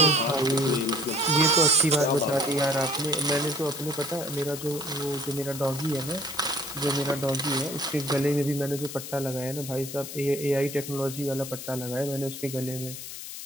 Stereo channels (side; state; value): left; noise; hiss, 10 dB below the sound